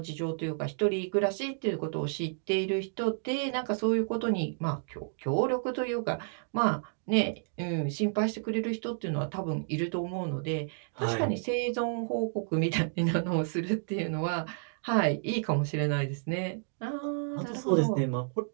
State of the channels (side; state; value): left; silent; digital silence